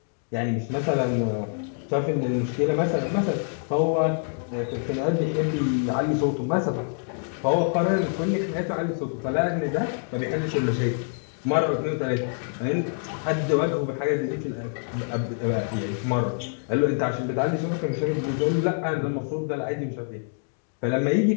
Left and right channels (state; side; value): silent; right; digital silence